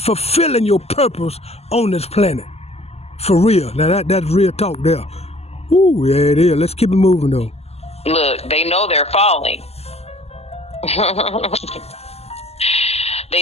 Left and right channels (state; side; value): late; right; 0.30 ms